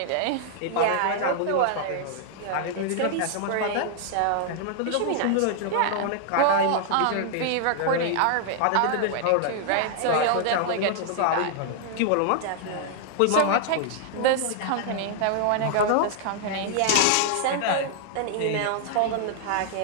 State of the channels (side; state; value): both; different; correlation -0.01